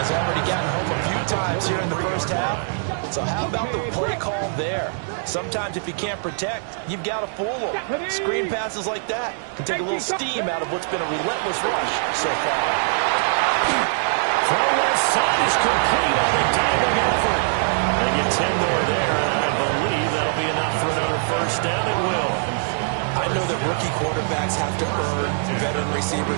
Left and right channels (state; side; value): silent; left; digital silence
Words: has already gotten home a few times here in the first half. So how about the play call there? Sometimes if you can't protect, you've got to fool them. Screen passes like that can take a little steam out of what's been a relentless rush so far. Throw left side is complete on the diving effort. They get 10 more there, and I believe that'll be enough for another first down. It will. I know that rookie quarterbacks have to earn veteran